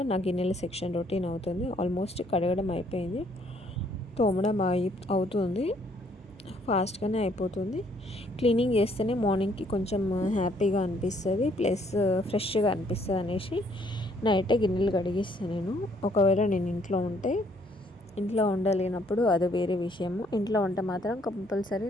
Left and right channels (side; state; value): both; normal; correlation 0.66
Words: నా గిన్నెల సెక్షన్ రొటీన్ అవుతుంది. ఆల్మోస్ట్ కడగడం అయిపోయింది, తోమడం అవుతుంది. ఫాస్ట్గానే అయిపోతుంది. క్లీనింగ్ చేస్తేనే మార్నింగ్కి కొంచెం హ్యాపీగా అనిపిస్తుంది, ప్లస్ ఫ్రెష్గా అనిపిస్తుంది అనేసి నైటే గిన్నెలు కడిగిస్తాను నేను. ఒకవేళ నేను ఇంట్లో ఉంటే, ఇంట్లో ఉండలేనప్పుడు అది వేరే విషయము. ఇంట్లో ఉంటే మాత్రం కంపల్సరీ